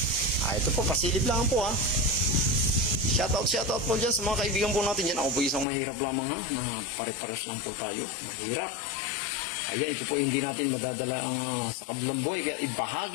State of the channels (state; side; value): drops out; right; at 5.7 s